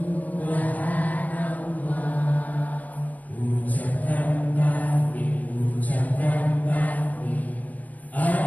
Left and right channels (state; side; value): late; right; 0.077 ms